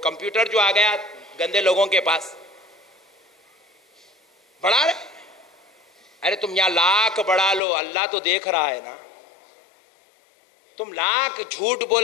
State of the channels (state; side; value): drops out; right; at 7.6 s